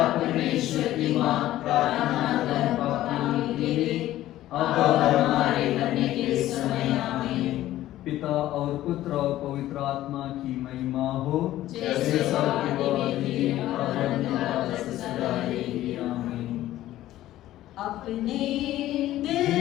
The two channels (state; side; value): quieter; right; 14.3 dB